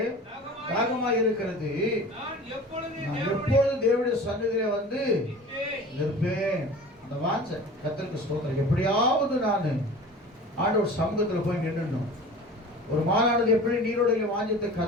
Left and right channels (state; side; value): normal; both; correlation 0.39